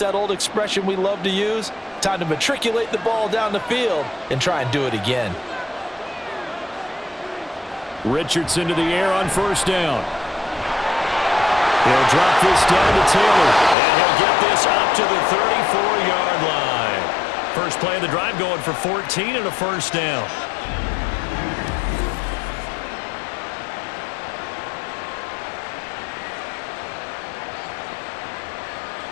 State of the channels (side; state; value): right; drops out; at 13.8 s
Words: that old expression we love to use? Time to matriculate the ball down the field and try and do it again. Richardson to the air on first down. He'll drop this down to Taylor, and he'll get this up to the 34-yard line. First play of the drive going for 14 and a first down.